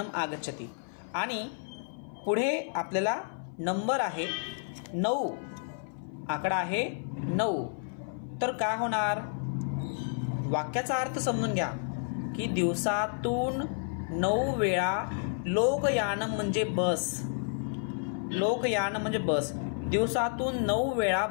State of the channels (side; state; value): right; silent; 56 dB below the other